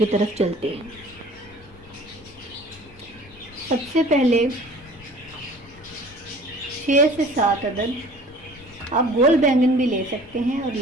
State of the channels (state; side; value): noise; left; rumble, 22 dB below the sound